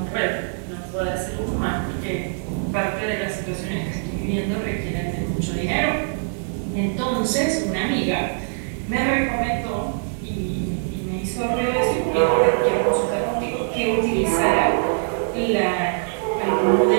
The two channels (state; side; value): silent; left; digital silence